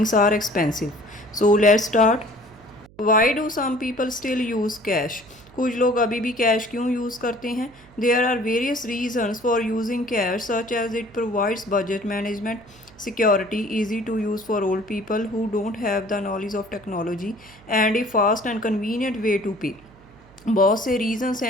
are expensive. So let's start. Why do some people still use cash? कुछ लोग अभी भी cash क्यों use करते हैं? There are various reasons for using cash, such as it provides budget management, security, easy to use for old people who don't have the knowledge of technology, and a fast and convenient way to pay. बहुत से reasons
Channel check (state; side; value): noise; right; hum, 25 dB below the sound